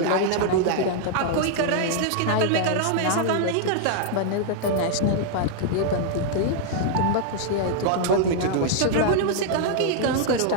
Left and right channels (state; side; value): different; both; correlation -0.01